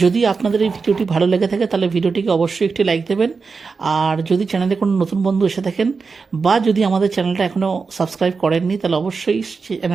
যদি আপনাদের এই ভিডিওটি ভালো লেগে থাকে তাহলে ভিডিওটিকে অবশ্যই একটি লাইক দেবেন, আর যদি চ্যানেলে কোনো নতুন বন্ধু এসে থাকেন বা যদি আমাদের চ্যানেলটা এখনও সাবস্ক্রাইব করেননি তাহলে অবশ্যই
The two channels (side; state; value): left; quieter; 4.8 dB